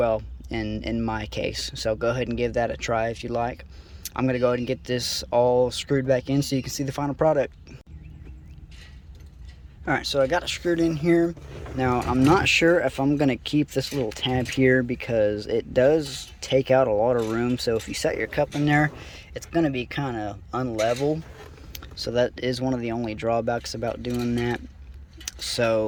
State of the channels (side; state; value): both; identical; correlation 1.00